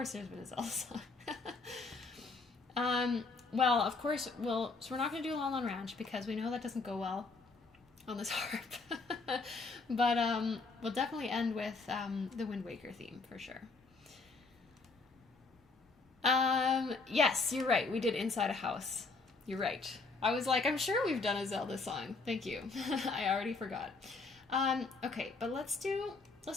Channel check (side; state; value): right; quieter; 4.0 dB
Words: there's been a Zelda song. Well, of course, so we're not going to do La La Ranch because we know that doesn't go well on this harp. But we'll definitely end with the Wind Waker theme for sure. Yes, you're right. We did Inside a House. You're right. I was like, I'm sure we've done a Zelda song. Thank you. I already forgot. Okay, but let's do